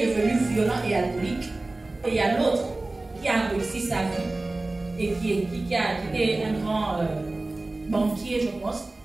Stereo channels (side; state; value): left; quieter; 3.0 dB